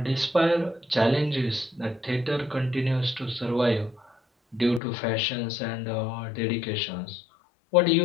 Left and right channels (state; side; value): drops out; right; at 4.8 s